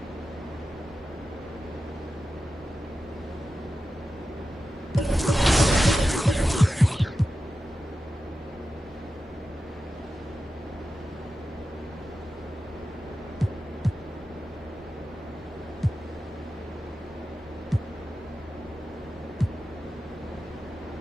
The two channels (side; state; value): both; normal; correlation 0.92